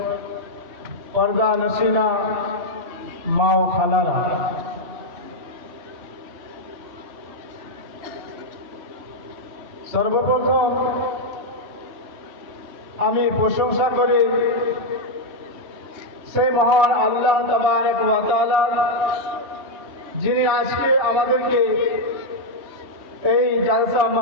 পর্দা নসিনা মা ও খালারা, সর্বপ্রথম আমি প্রশংসা করি সেই মহান আল্লাহ তাবারক ওয়া তাআলা, যিনি আজকে আমাদেরকে এই জালসা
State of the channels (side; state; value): left; late; 2.7 ms